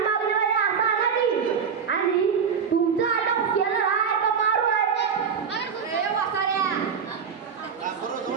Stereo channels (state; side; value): quieter; left; 6.6 dB